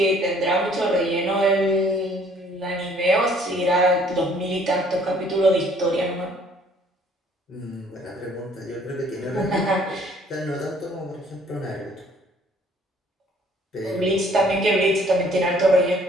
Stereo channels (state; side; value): normal; both; correlation 0.59